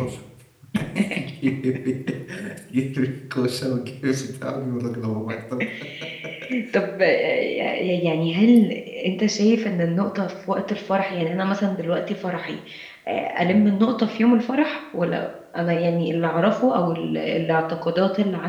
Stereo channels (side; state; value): both; identical; correlation 1.00